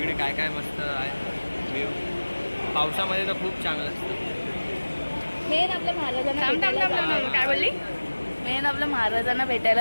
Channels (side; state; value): both; inverted; correlation -1.00